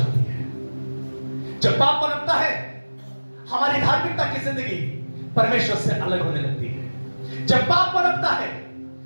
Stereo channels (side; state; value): both; inverted; correlation -1.00